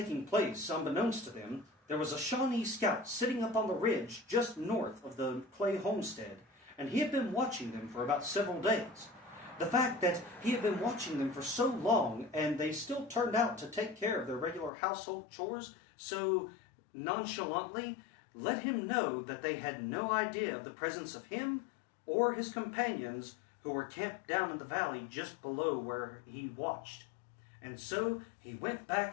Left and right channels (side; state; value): right; drops out; at 14.7 s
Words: place, unbeknownst to them, there was a Shawnee scout sitting up on the ridge just north of the Clay homestead, and he had been watching them for about several days. The fact that he had been watching them for so long and they still turned out to take care of their regular household chores so nonchalantly let him know that they had no idea of the presence of him or his companions who were camped down in the valley just below where he watched. And so he went